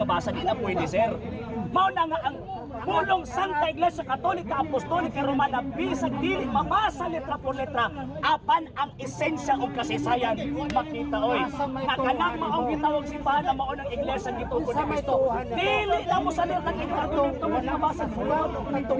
di na pwede, sir. Mao na nga ang pulong Santa Iglesia Katolika Apostolika Romana bisag dili mabasa letra por letra apan ang esensya ug kasaysayan makita oy kanang maong gitawag simbahan na mao ng iglesia gitugon ni Kristo dili na mo sa letra kini argumento mo mabasa sulat itong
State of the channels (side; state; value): both; identical; correlation 1.00